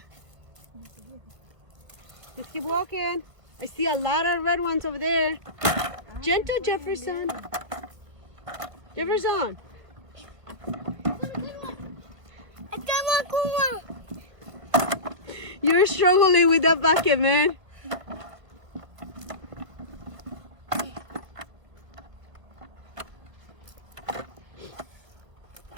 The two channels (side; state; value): left; late; 1.4 ms